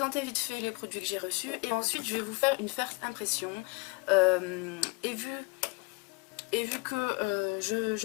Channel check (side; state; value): right; quieter; 29.2 dB